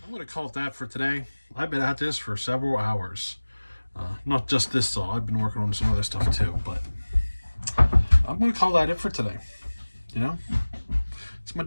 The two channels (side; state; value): both; inverted; correlation -1.00